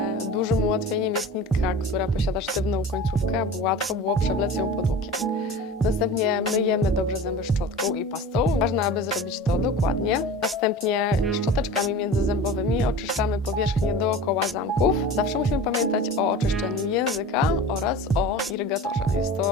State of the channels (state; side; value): normal; both; correlation 0.36